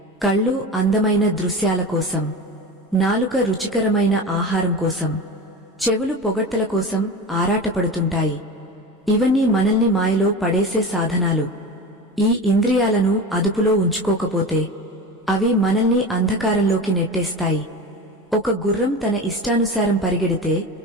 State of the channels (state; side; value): normal; both; correlation 0.28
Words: కళ్ళు అందమైన దృశ్యాల కోసం, నాలుక రుచికరమైన ఆహారం కోసం, చెవులు పొగడ్తల కోసం ఆరాటపడుతుంటాయి. ఇవన్నీ మనల్ని మాయలో పడేసే సాధనాలు. ఈ ఇంద్రియాలను అదుపులో ఉంచుకోకపోతే అవి మనల్ని అంధకారంలోకి నెట్టేస్తాయి. ఒక గుర్రం తన ఇష్టానుసారం పరిగెడితే